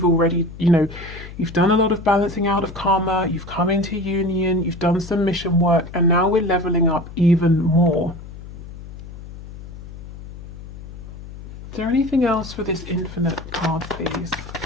already, you've done a lot of balancing out of karma, you've come into union, you've done some mission work, and now we're leveling up even more. Is there anything else for this infinite card, please?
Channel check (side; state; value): left; noise; hum, 14 dB below the sound